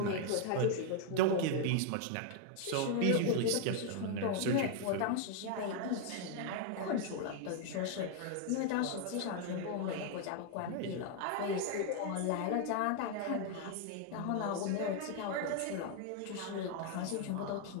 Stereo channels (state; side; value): different; both; correlation 0.00